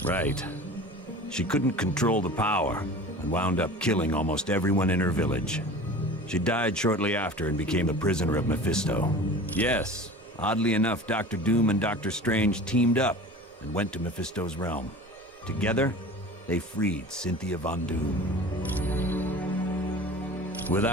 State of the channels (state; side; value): normal; both; correlation 0.39